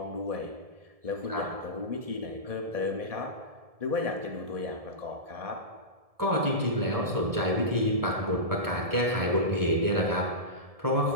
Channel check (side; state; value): left; late; 1.7 ms